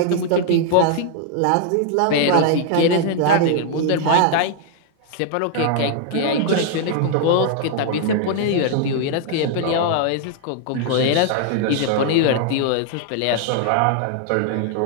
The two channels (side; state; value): both; different; correlation 0.00